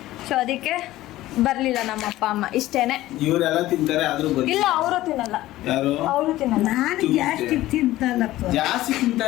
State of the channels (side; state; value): right; quieter; 15.9 dB